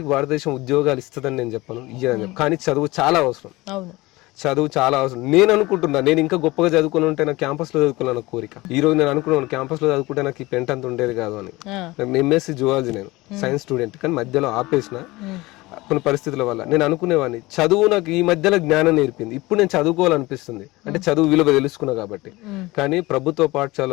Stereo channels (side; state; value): right; quieter; 20.8 dB